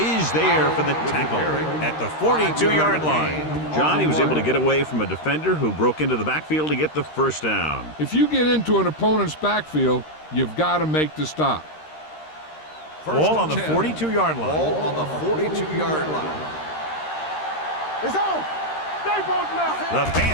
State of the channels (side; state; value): right; late; 13 ms